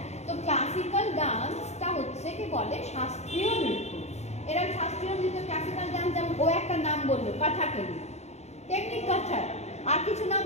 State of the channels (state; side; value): late; right; 0.32 ms